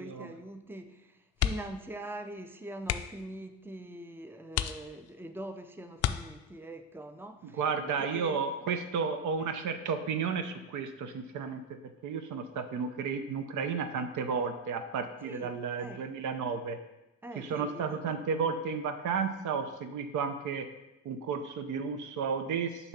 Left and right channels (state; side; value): quieter; left; 3.2 dB